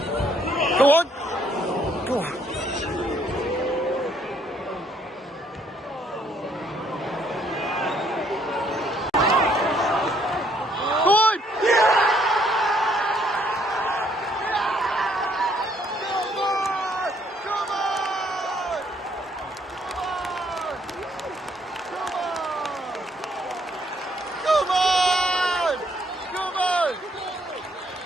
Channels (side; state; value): both; normal; correlation 0.67